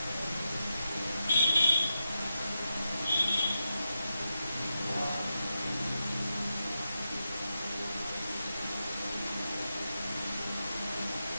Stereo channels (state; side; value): inverted; both; correlation -0.87